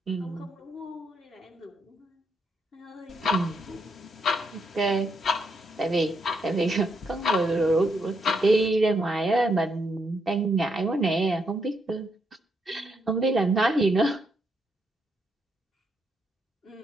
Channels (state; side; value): normal; both; correlation 0.78